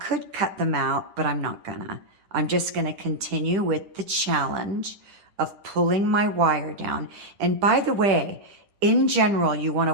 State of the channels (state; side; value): late; left; 10 ms